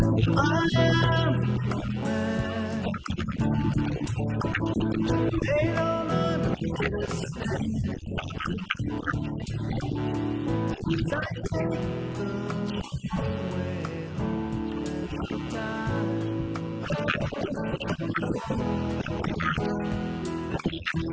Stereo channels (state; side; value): identical; both; correlation 1.00